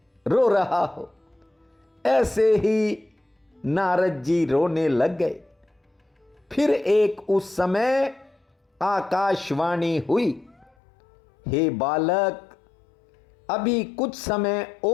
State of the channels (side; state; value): right; drops out; at 10.7 s